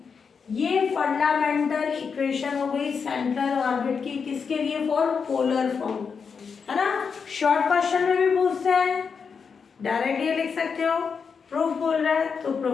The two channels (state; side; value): quieter; right; 5.9 dB